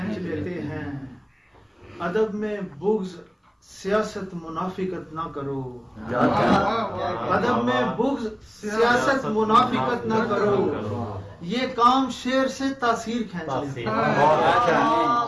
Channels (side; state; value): both; identical; correlation 1.00